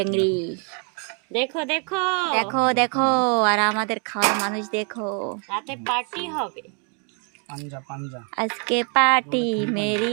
देखो देखो देखो देखो আর আমাদের খাওয়ার মানুষ দেখো রাতে পার্টি হবে পাঞ্জা পাঞ্জা আজকে পার্টি মেরি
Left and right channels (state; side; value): quieter; left; 36.8 dB